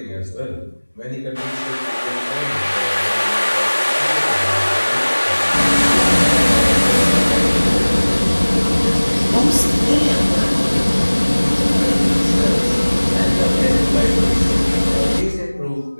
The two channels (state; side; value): inverted; both; correlation -1.00